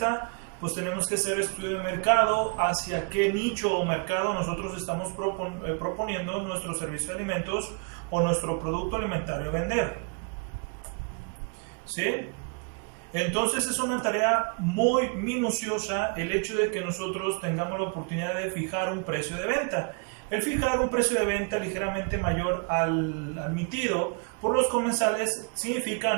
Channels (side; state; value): left; quieter; 35.9 dB